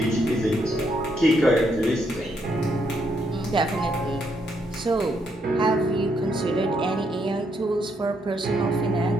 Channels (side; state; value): both; normal; correlation 0.75